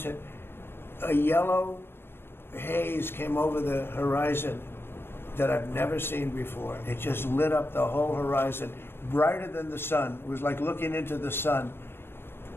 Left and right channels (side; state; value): right; late; 0.11 ms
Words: hit, a yellow haze came over the horizon that I've never seen before. It just lit up the whole horizon, brighter than the sun. It was like looking into the sun.